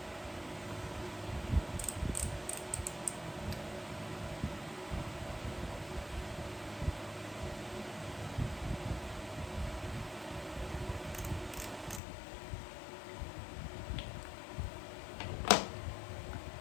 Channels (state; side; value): drops out; right; at 12.0 s